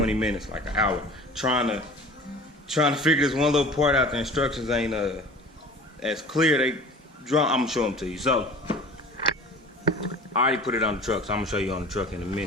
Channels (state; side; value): normal; both; correlation 0.41